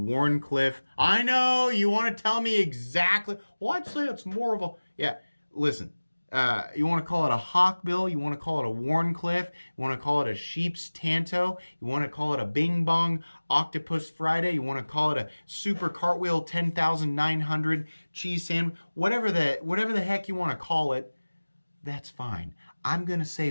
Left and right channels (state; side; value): inverted; both; correlation -1.00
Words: I know, you want to tell me exactly. Well, I'd say it's more of a, yeah, listen. You want to call it a Hawkbill, you want to call it a Wharncliffe, you want to call it a Sheep's Tanto, you want to call it a Bing Bong Octopus Friday, you want to call it a Super Cartwheel 10,900 cheese sandwich, whatever the heck you want to call it, that's fine. I'm going to say